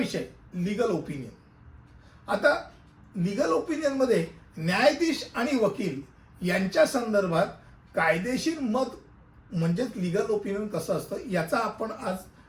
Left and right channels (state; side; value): identical; both; correlation 1.00